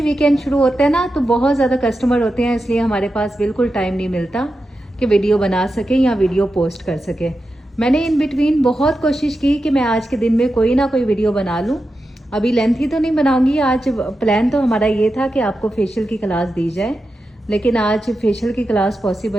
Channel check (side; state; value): both; normal; correlation 0.90